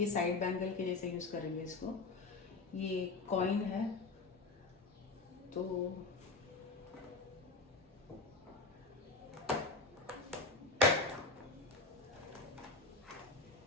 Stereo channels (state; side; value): quieter; right; 3.7 dB